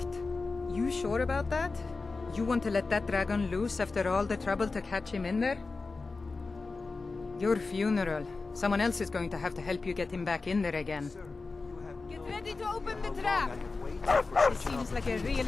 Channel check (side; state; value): right; quieter; 3.9 dB